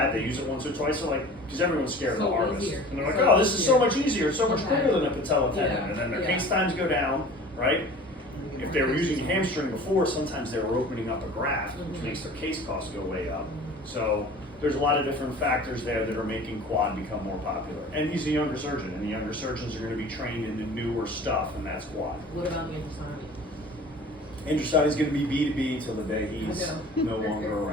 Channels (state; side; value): normal; both; correlation 0.43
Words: they use it once or twice. They're like, because everyone's scared of the So harvest, easier. and they're like, So oh, this is so easier. much easier, it's so much Okay. quicker than a patella tendon, Yeah, and then their yeah. case times go down, right? If they were using a hamstring before, sometimes they were opening up a graft, which Mhm. makes their case costs go way up. So there's a lot of different factors there that are making quad become more popular. And he's a younger surgeon, and the younger surgeons are going to be trained in the newer stuff, and that's quad. What about the Andrusani? Andrusani is going to be B2B till the day he's I no longer